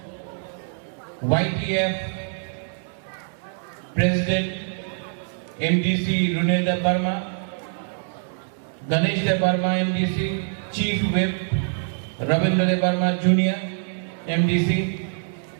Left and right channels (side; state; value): left; silent; digital silence